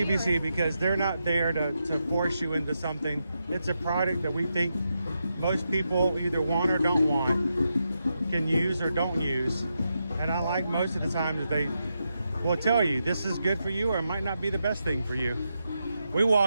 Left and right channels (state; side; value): inverted; both; correlation -0.86